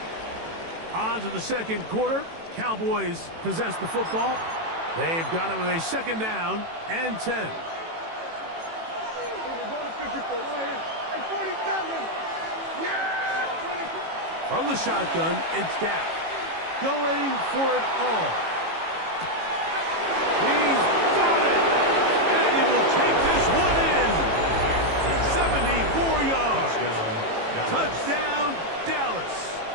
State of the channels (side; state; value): left; late; 18 ms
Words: On to the second quarter. Cowboys possess the football. They've got it with a 2nd down and 10. From the shotgun, it's Dak. Going for it all. He's got it! And he will take this one in. 74 yards. Touchdown, Dallas.